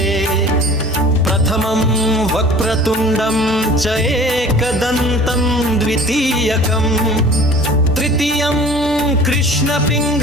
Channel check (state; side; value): normal; both; correlation 0.45